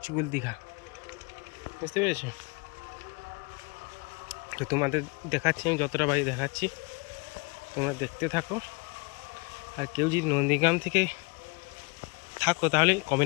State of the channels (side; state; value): right; quieter; 29.7 dB